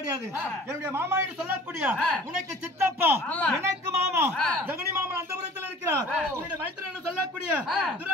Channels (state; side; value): normal; both; correlation 0.48